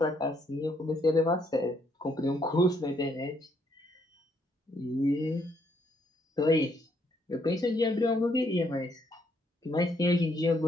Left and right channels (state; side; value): normal; both; correlation 0.72